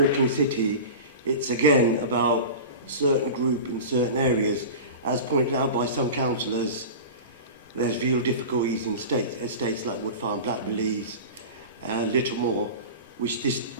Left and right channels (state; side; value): inverted; both; correlation -0.32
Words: city, it's again about certain group in certain areas. As pointed out by some councillors, there's real difficulties in estates like Wood Farm, Blackbellies, Littlemore, which this